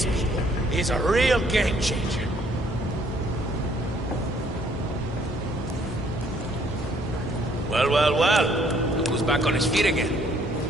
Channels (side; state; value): both; normal; correlation 0.64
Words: is a real game changer. Well. Look who's back on his feet again.